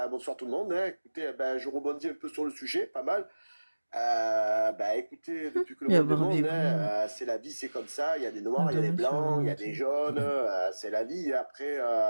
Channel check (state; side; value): inverted; both; correlation -1.00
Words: bonsoir tout le monde. Hein. Écoutez, ben, je rebondis un peu sur le sujet, pas mal. Ben, écoutez, depuis que le Il y a monde est monde, Barbie hein, c'est la vie, c'est comme ça. Il y a des noirs, il y a des blancs, il y a des jaunes. C'est la vie. Après,